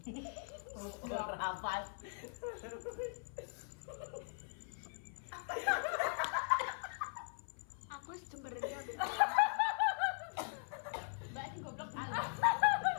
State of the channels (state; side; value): silent; right; 51 dB below the other